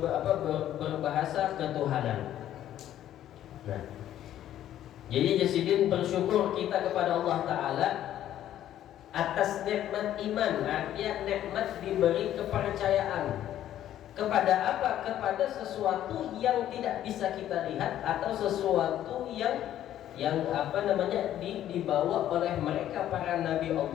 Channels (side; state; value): right; quieter; 11.9 dB